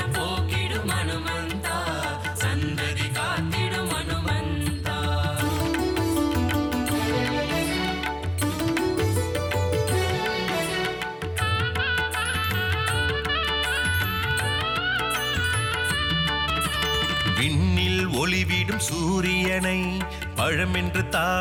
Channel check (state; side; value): identical; both; correlation 1.00